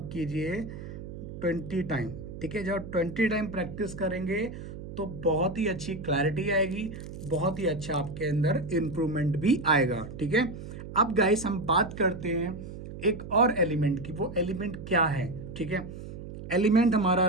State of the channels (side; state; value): right; noise; hum, 11 dB below the sound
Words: कीजिए 20 टाइम, ठीक है। जब 20 टाइम प्रैक्टिस करेंगे तो बहुत ही अच्छी क्लैरिटी आएगी, बहुत ही अच्छा आपके अंदर इम्प्रूवमेंट भी आएगा, ठीक है। अब गाइस हम बात करते हैं एक और एलिमेंट की। वो एलिमेंट क्या है, ठीक है। एलिमेंट हमारा